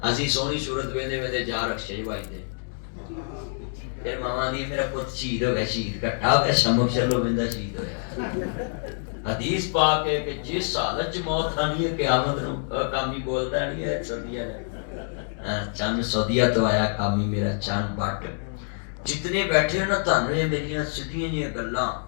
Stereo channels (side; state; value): right; silent; digital silence